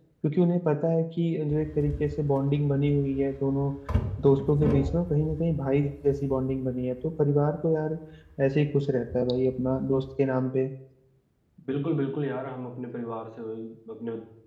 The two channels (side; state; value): both; identical; correlation 1.00